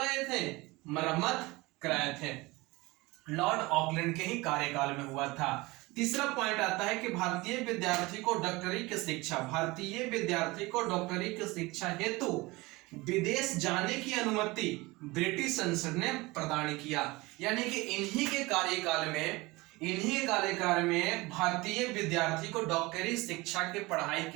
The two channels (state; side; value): quieter; left; 22.3 dB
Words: थे, मरम्मत कराए थे। लॉर्ड ऑकलैंड के ही कार्यकाल में हुआ था। तीसरा पॉइंट आता है कि भारतीय विद्यार्थी को डॉक्टरी की शिक्षा हेतु विदेश जाने की अनुमति ब्रिटिश संसद ने प्रदान किया। यानी कि इन्हीं के कार्यकाल में भारतीय विद्यार्थी को डॉक्टरी शिक्षा की पढ़ाई